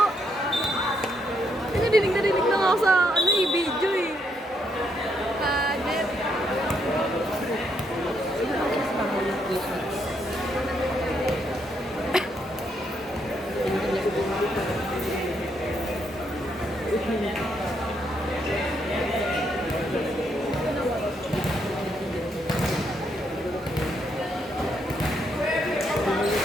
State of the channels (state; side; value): normal; both; correlation 0.76